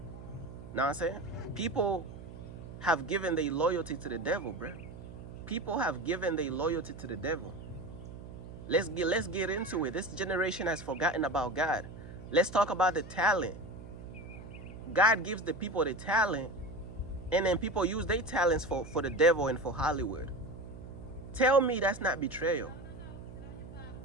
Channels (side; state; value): right; noise; hum, 14 dB below the sound